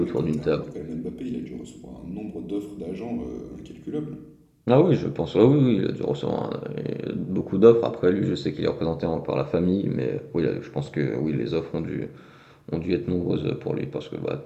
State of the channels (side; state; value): both; identical; correlation 1.00